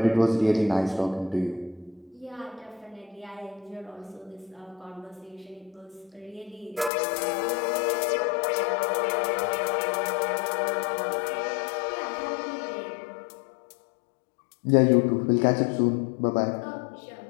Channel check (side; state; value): right; drops out; at 6.9 s